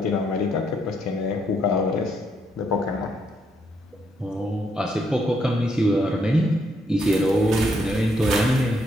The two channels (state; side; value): normal; both; correlation 0.75